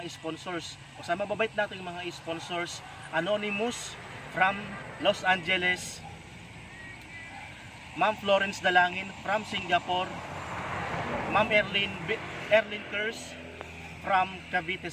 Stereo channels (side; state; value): both; identical; correlation 1.00